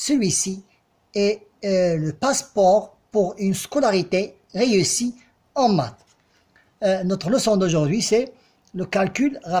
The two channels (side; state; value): both; identical; correlation 1.00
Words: est le passeport pour une scolarité réussie en maths. Notre leçon d'aujourd'hui, c'est le calcul